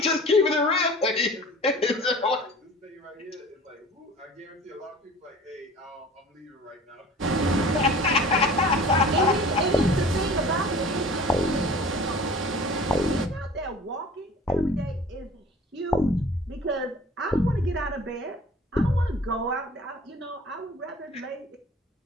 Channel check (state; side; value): normal; both; correlation 0.44